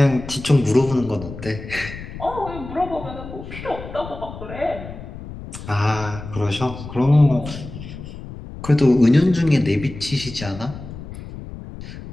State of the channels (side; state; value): left; noise; rumble, 12 dB below the sound